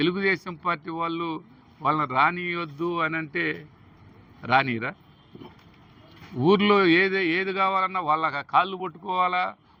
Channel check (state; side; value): identical; both; correlation 1.00